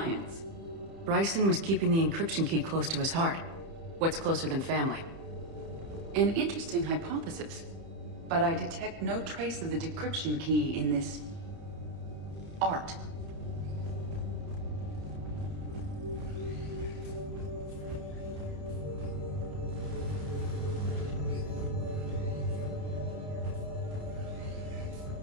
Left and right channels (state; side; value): late; left; 30 ms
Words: Bryson was keeping the encryption key close to his heart. What's closer than family? An interesting hypothesis. But I detect no trace of the decryption key in this... art.